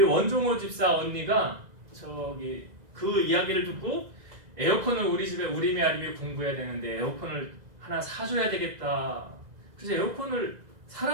원종호 집사 언니가 저기 그 이야기를 듣고 에어컨을 우리 집에 우리미 아리미 공부해야 되는데 에어컨을 하나 사줘야 되겠다. 그래서 에어컨을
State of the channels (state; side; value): late; left; 2.0 ms